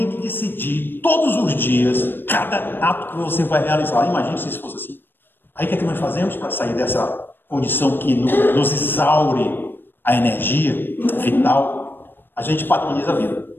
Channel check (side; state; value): right; late; 0.097 ms